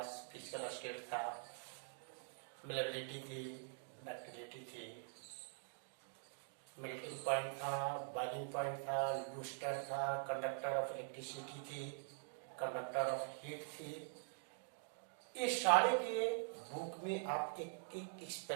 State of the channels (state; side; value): silent; left; digital silence